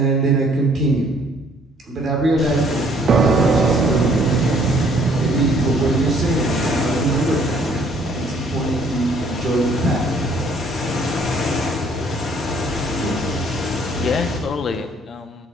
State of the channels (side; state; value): both; normal; correlation 0.61